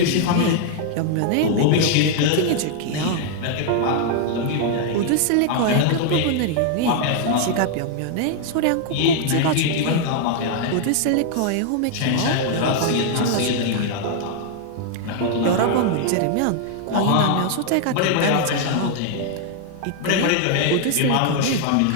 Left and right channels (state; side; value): different; both; correlation 0.00